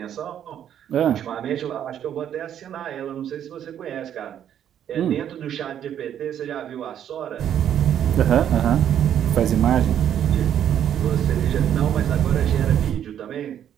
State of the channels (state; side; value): quieter; left; 9.9 dB